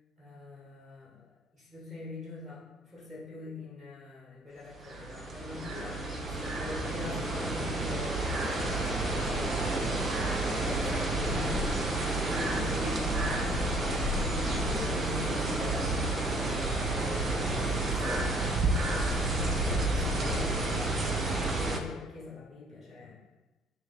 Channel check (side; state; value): both; normal; correlation 0.58